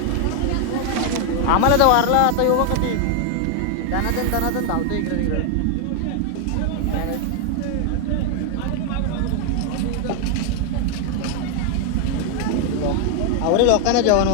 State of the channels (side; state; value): both; different; correlation 0.00